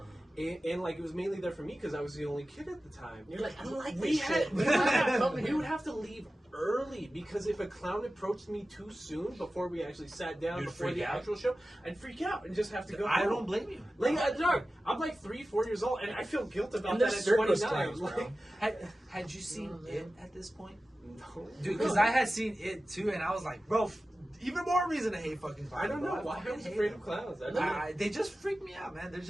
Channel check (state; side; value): normal; both; correlation 0.95